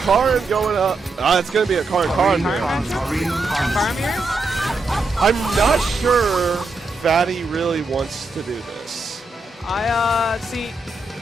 going up. It's going to be a Karin mirror. Karin mirror? I'm not sure Fatty really wants to do this. See,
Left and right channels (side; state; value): left; quieter; 3.3 dB